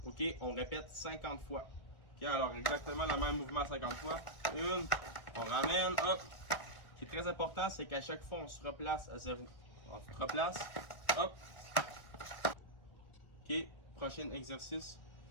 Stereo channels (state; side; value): late; right; 1.5 ms